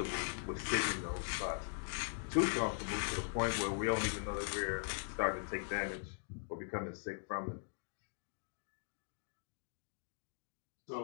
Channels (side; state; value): right; silent; digital silence